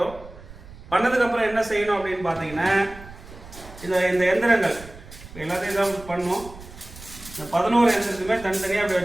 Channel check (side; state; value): right; noise; rumble, 17 dB below the sound